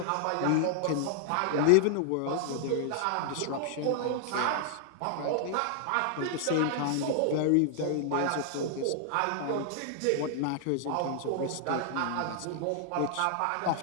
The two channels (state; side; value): different; both; correlation 0.00